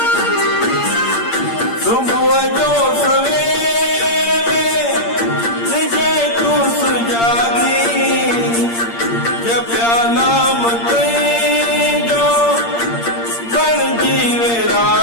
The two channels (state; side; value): late; right; 8.7 ms